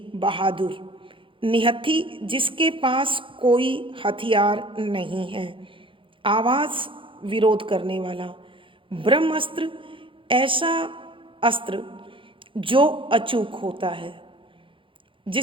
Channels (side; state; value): left; late; 0.25 ms